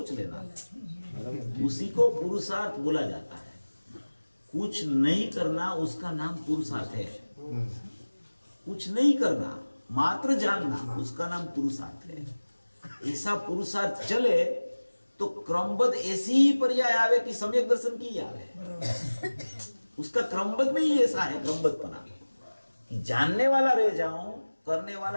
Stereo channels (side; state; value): both; inverted; correlation -1.00